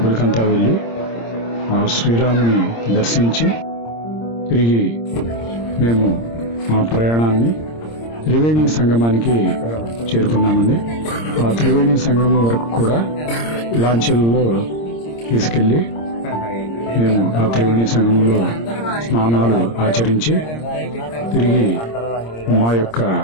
వెళ్ళి ఆ శ్రీరాముని దర్శించి తిరిగి మేము మా ప్రయాణాన్ని త్రివేణి సంగమానికి చేరుకున్నామండి. ఆ త్రివేణి సంగమం వరకు కూడా లాంచీలలో తీసుకెళ్లి మేము ఆ త్రివేణి సంగమంలో స్నానాలు ఆచరించి తిరిగి మా యొక్క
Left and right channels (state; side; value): late; right; 26 ms